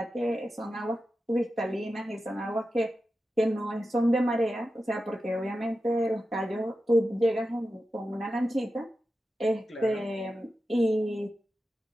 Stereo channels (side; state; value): both; normal; correlation 0.91